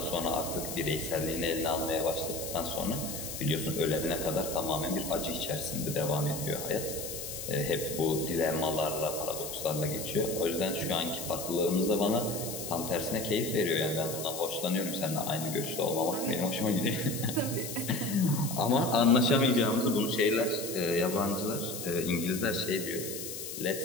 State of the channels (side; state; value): left; noise; hiss, 7 dB below the sound